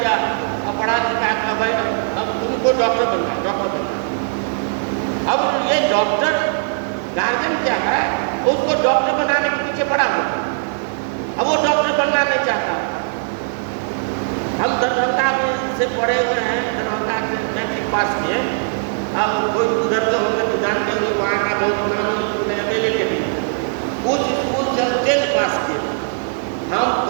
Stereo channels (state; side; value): silent; left; 66 dB below the other